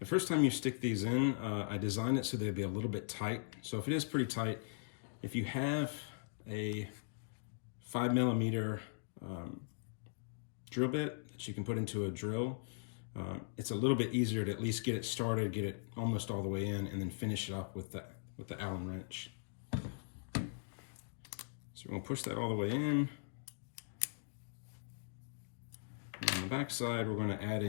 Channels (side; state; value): right; silent; digital silence